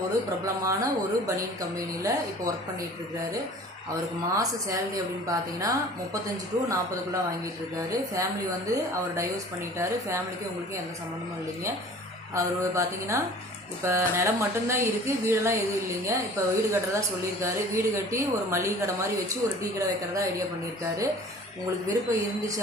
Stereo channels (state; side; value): normal; both; correlation 0.46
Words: ஒரு பிரபலமான ஒரு பனியன் கம்பெனியில் இப்போ ஒர்க் பண்ணிகிட்ருக்காரு. அவருக்கு மாத சேலரி அப்படின்னு பார்த்தீங்கன்னா 35 to 40 வாங்கிட்டு இருக்காரு. ஃபேமிலி அவர் டைவர்ஸ் பண்ணிட்டாரு. ஃபேமிலிக்கு உங்களுக்கு எந்த சம்மந்தமும் இல்லைங்க. அவர் பார்த்தீங்கன்னா இப்போ நிலம் மட்டும்தான் இருக்குது, வீடெல்லாம் எதுவும் இல்லைங்க. இப்போ வீடு கட்டுறதா சொல்லியிருக்காரு. வீடு கட்டி ஒரு மளிகை கடை மாதிரி வச்சு ஒரு டீ கடை வைக்கிறதா ஐடியா பண்ணியிருக்காரு. உங்களுக்கு விருப்பம் இருந்துச்சு